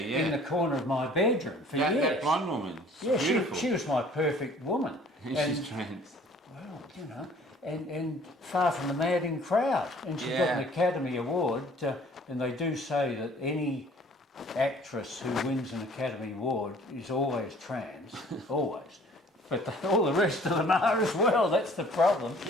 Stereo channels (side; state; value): both; normal; correlation 0.53